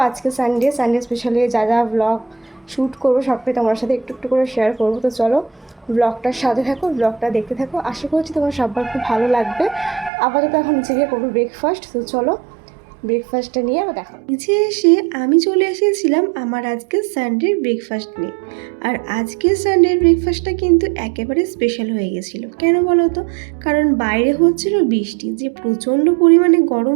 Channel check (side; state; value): left; drops out; at 10.1 s